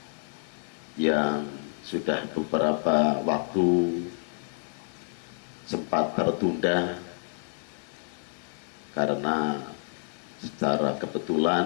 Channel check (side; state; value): right; silent; 59 dB below the other